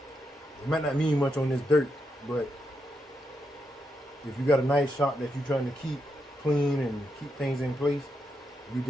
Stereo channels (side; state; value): both; normal; correlation 0.83